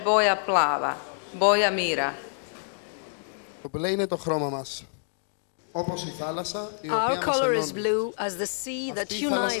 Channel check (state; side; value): silent; right; digital silence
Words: plava, boja mira. Our color is blue as the sea that